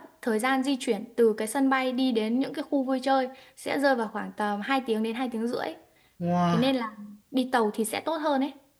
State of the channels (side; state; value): both; identical; correlation 1.00